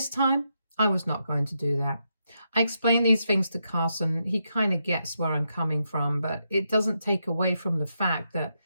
time, I was not going to do that. I explained these things to Carson. He kind of gets where I'm coming from, but it doesn't take away from the fact that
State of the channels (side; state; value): both; inverted; correlation -0.82